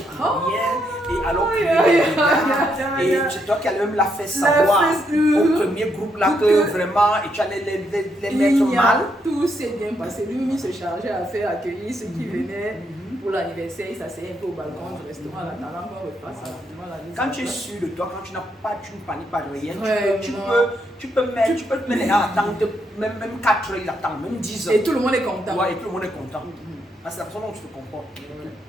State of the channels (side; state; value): both; normal; correlation 0.77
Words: rien. Et alors et c'est toi qui allais même la faire savoir au premier groupe là que vraiment, et tu allais les mettre mal. Tout s'est bien passé. Lui, il se chargeait à faire accueillir ceux qui venaient pour l'anniversaire. Il s'asseyait un peu au balcon du restaurant en attendant qu'on repasse rapidement la mise. Quand tu es sûr de toi, quand tu ne paniques pas de rien, tu peux mettre les gens à attendre, même 4 heures, ils attendent, même 10 heures. Et tout le monde est content. Ouais, et tout le monde est content. C'est la façon dont tu te comportes.